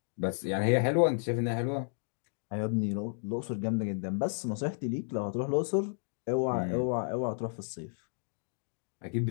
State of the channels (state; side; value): silent; right; digital silence